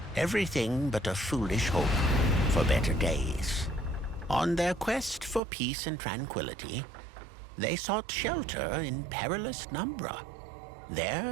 Everything but a foolish hope for better days. On their quest for peace and tranquility, they sought shelter in perilous Numbra.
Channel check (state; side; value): drops out; left; at 5.4 s